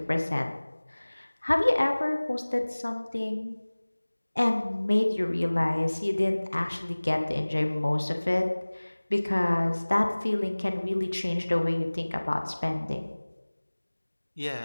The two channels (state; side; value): inverted; both; correlation -1.00